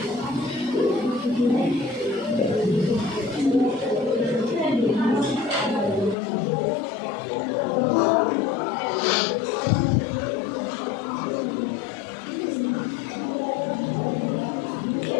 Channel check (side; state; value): right; drops out; at 6.2 s